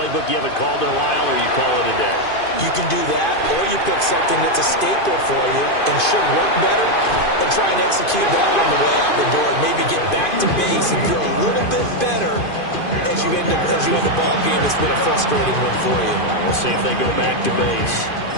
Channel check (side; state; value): right; late; 2.5 ms